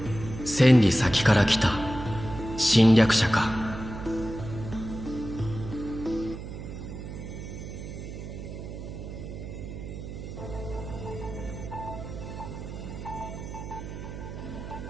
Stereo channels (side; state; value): right; noise; hum, 9 dB below the sound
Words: 千里先から来た侵略者か。